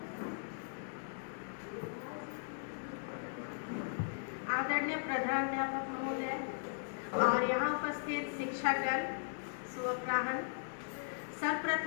आदरणीय प्रधानाध्यापक महोदय और यहाँ उपस्थित शिक्षकगण, शुभ अपराह्न।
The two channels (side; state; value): right; silent; digital silence